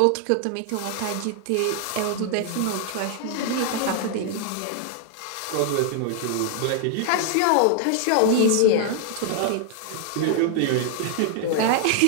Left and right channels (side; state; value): both; different; correlation 0.00